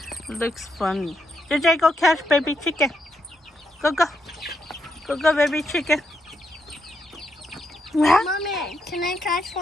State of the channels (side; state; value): both; normal; correlation 0.80